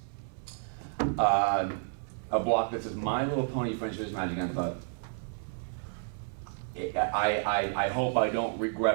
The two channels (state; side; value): silent; left; 57 dB below the other